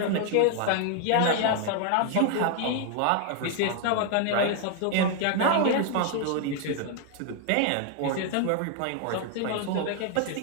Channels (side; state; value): both; different; correlation 0.00